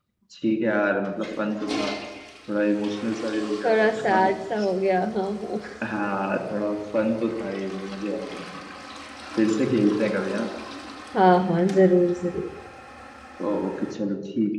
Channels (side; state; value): both; identical; correlation 1.00